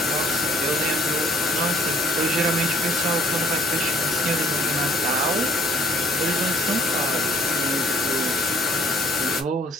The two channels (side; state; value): both; normal; correlation 0.59